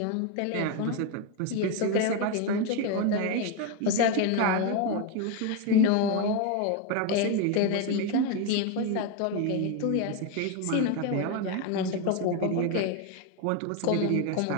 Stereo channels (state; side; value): different; both; correlation 0.02